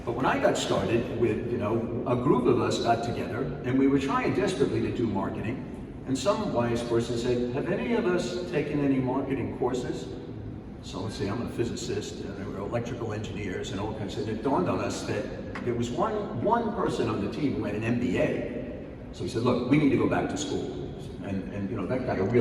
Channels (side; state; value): both; identical; correlation 1.00